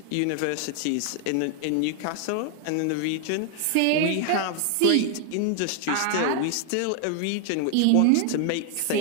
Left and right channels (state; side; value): different; both; correlation 0.00